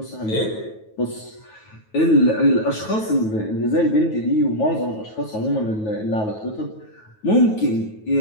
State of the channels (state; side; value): late; right; 9.3 ms